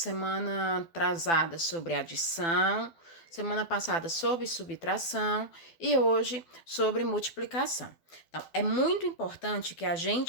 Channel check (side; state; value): right; late; 12 ms